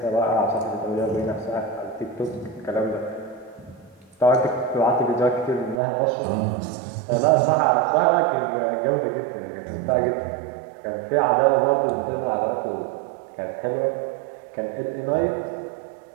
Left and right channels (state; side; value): drops out; left; at 5.8 s